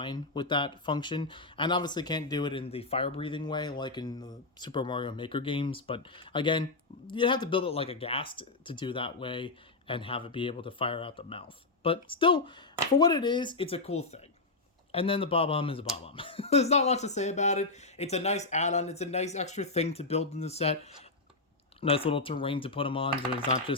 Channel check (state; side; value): quieter; right; 3.4 dB